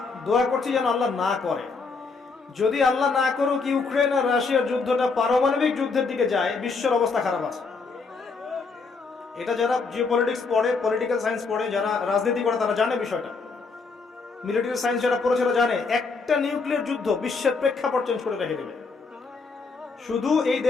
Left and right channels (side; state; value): right; quieter; 4.4 dB